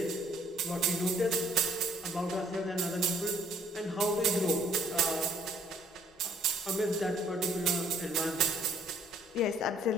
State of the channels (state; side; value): normal; both; correlation 0.63